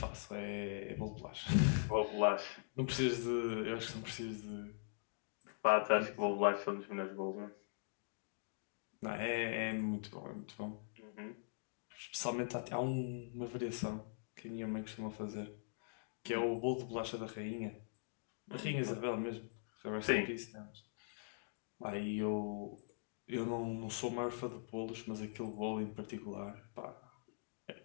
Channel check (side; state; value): right; silent; digital silence